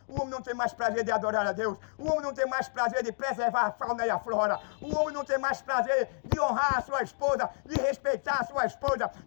O homem não tem mais prazer de adorar a Deus. O homem não tem mais prazer de preservar a fauna e a flora. O homem não tem mais prazer de honrar a sua esposa, de respeitar a sua esposa,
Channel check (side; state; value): right; silent; digital silence